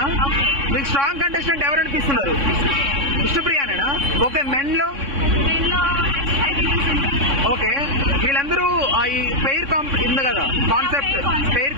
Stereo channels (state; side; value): late; left; 3.6 ms